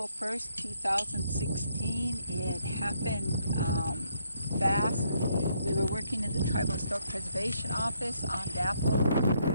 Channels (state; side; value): inverted; both; correlation -0.73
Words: 1st, 2016. It happened fast. We were working in the Tribal Historic Preservation Office on DAPO